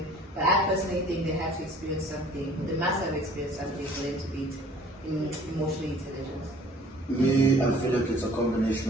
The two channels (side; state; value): both; normal; correlation 0.52